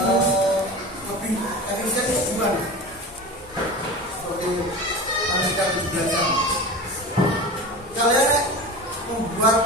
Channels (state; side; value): normal; both; correlation 0.32